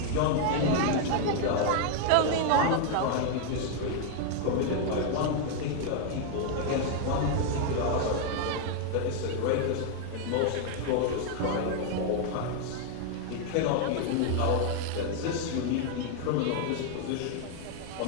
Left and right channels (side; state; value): both; different; correlation 0.00